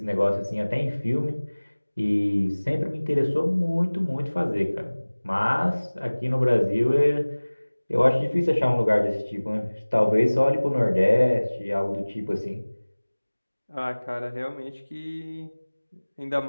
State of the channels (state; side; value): inverted; both; correlation -1.00